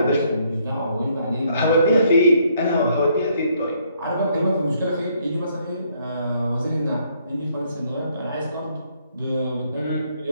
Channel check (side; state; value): both; inverted; correlation -0.69